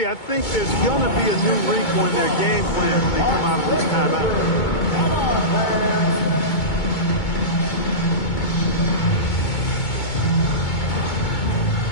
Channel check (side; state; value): right; late; 2.2 ms